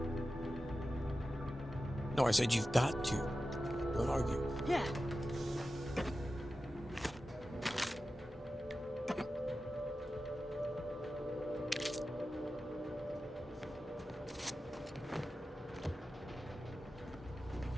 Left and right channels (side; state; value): both; normal; correlation 0.93